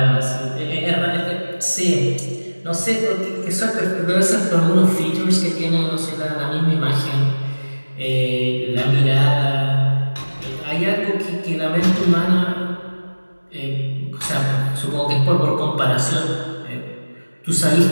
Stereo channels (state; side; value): inverted; both; correlation -1.00